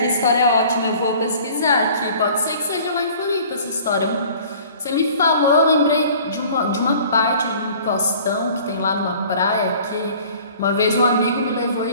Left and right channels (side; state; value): both; inverted; correlation -0.49